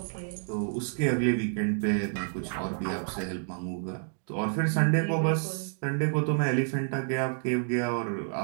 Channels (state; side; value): silent; left; digital silence